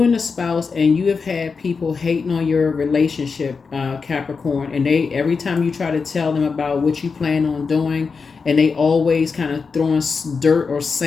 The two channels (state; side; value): quieter; right; 5.0 dB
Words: and a spouse and you have had people hating on your relationship, Capricorn, and they every time you try to tell them about what you plan on doing, and they always kind of throwing dirt or